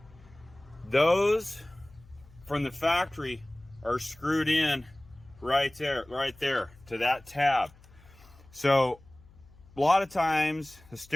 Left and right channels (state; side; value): noise; left; hum, 25 dB below the sound